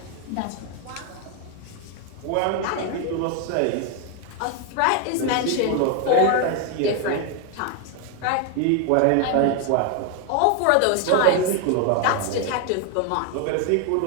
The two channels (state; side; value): different; both; correlation 0.01